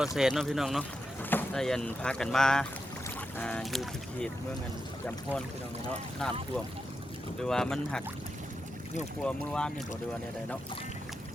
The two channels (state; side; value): normal; both; correlation 0.87